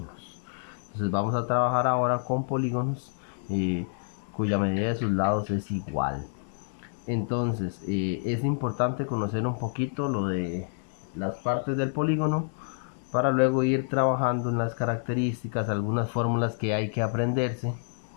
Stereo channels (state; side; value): silent; right; 59 dB below the other